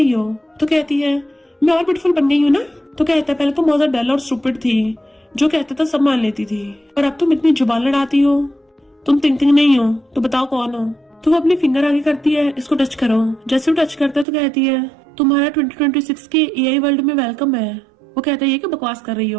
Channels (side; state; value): left; drops out; at 14.2 s